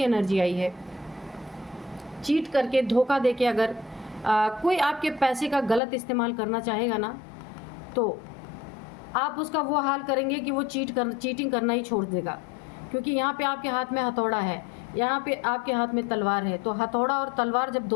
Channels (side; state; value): right; drops out; at 5.8 s